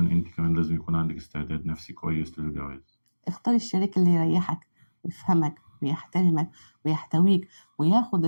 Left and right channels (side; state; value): both; inverted; correlation -1.00